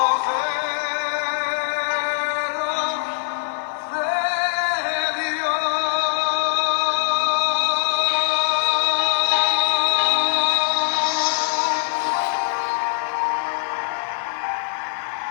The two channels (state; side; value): silent; right; digital silence